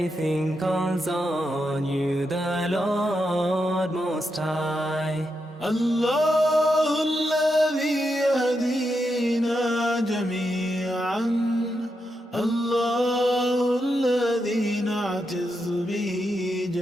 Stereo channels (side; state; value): both; normal; correlation 0.84